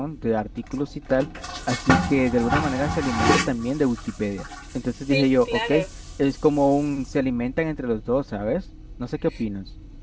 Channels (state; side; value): identical; both; correlation 1.00